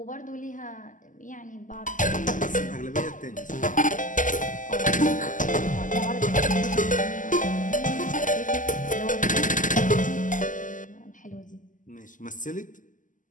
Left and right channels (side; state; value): right; late; 0.38 ms